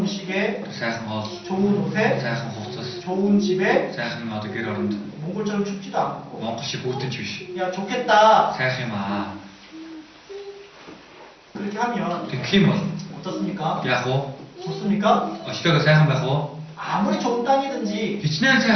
음식에 Сайхан хоол, 좋은 옷에 сайхан хувцас, 좋은 집에 сайхан одоо гэр оронд 몽골처럼 춥지도 않고 Монгол шиг бүтэнч биш. 야 좋겠다 Сайхан юм аа. 그렇게 하면 Тэгэх юм бол 어떻습니까? яах вэ? 좋습니까? Өчтөөгөө сайхан байх уу? 아무리 좋은 땅이든지 Хичнээн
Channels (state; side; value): identical; both; correlation 1.00